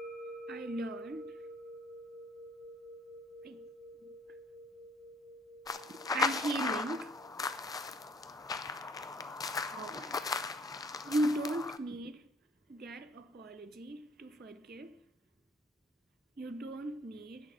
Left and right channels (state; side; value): normal; both; correlation 0.57